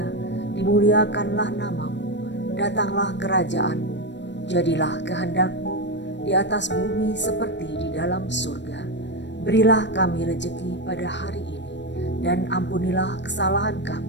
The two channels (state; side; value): late; right; 0.52 ms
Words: dimuliakanlah namamu, datanglah kerajaanmu, jadilah kehendak-mu di atas bumi seperti di dalam surga. Berilah kami rejeki pada hari ini, dan ampunilah kesalahan